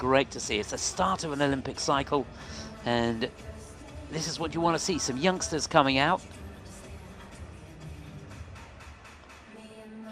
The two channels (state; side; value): identical; both; correlation 1.00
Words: to see. It's the start of an Olympic cycle, and this is what you want to see, some youngsters coming out.